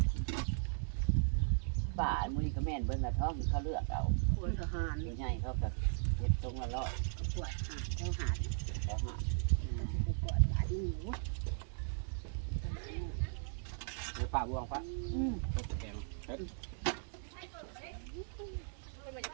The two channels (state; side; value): silent; left; digital silence